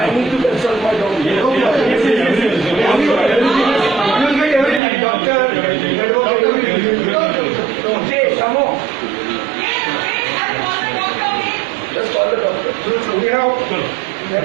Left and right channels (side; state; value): left; drops out; at 4.8 s